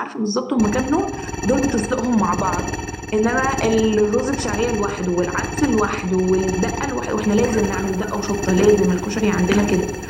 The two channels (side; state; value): both; identical; correlation 1.00